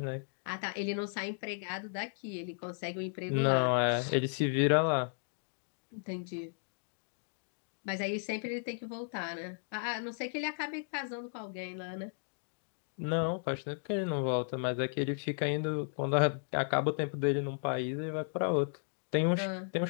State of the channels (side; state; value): right; silent; digital silence